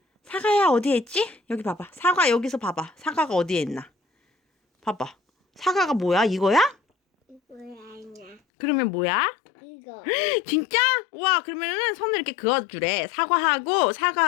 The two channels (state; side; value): drops out; right; at 8.4 s